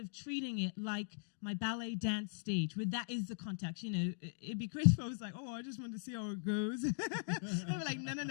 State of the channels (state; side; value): silent; right; digital silence